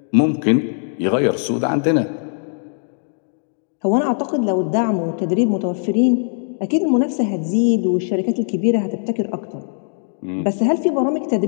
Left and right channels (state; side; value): silent; right; digital silence